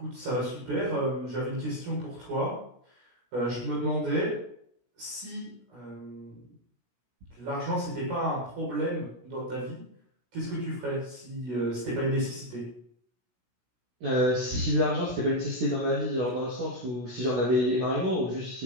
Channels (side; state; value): left; late; 17 ms